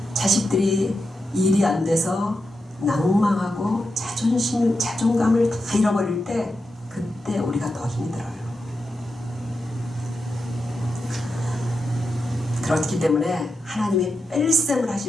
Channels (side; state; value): both; normal; correlation 0.87